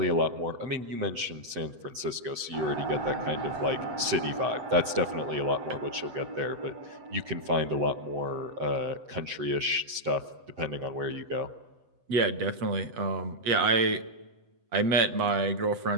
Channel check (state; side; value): late; left; 7.9 ms